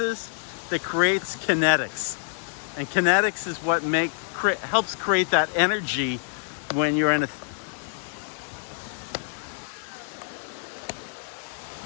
that creates kinetics, and kinetics is what helps create that energy when you're in a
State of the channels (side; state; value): right; silent; digital silence